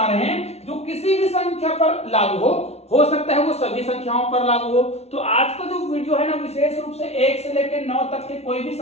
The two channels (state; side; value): late; right; 0.31 ms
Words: रहे हैं जो किसी भी संख्या पर लागू हो सकता है वो सभी संख्याओं पर लागू हो। तो आज का जो वीडियो है ना, विशेष रूप से 1 से लेकर 9 तक के कोई भी